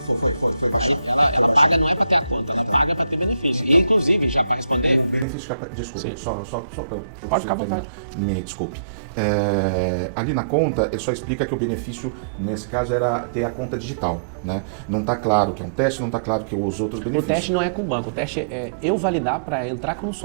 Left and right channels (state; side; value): drops out; left; at 5.2 s